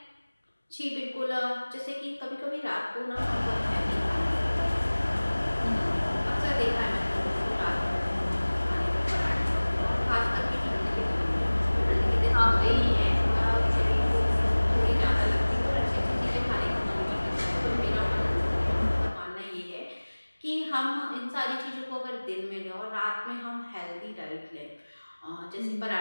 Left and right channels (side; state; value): both; inverted; correlation -1.00